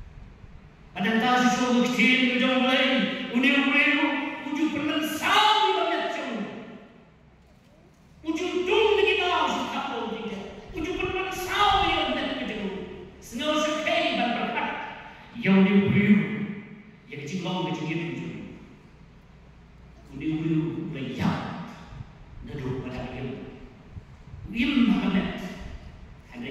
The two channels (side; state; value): both; identical; correlation 1.00